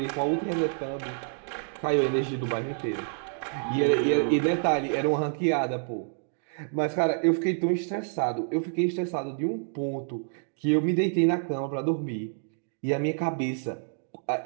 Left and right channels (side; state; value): left; silent; digital silence